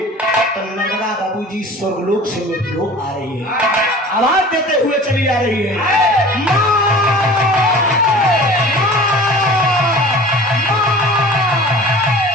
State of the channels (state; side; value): normal; both; correlation 0.42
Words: नर्मदा बाबूजी स्वर्गलोक से मृत्युलोक आ रही है, आवाज देते हुए चली आ रही है,